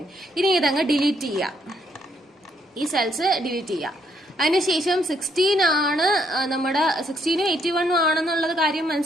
ഇനി ഇതങ്ങ് ഡിലീറ്റ് ചെയ്യുക. ഈ സെൽസ് ഡിലീറ്റ് ചെയ്യുക. അതിനുശേഷം 16 ആണ് നമ്മുടെ 16 81 ആണെന്നുള്ളത് കാര്യം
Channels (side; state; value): both; normal; correlation 0.72